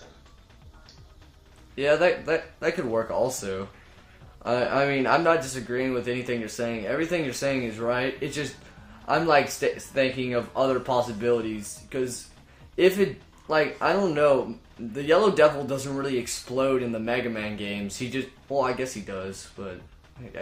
Yeah, that could work also. I mean, I'm not disagreeing with anything you're saying. Everything you're saying is right. It's just, I'm like thinking of other possibilities. Because if it, like, I don't know, the Yellow Devil doesn't really explode in the Mega Man games. He just, well, I guess he does, but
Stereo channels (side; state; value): both; identical; correlation 1.00